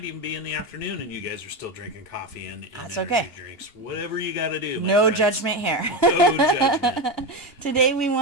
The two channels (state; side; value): late; right; 2.5 ms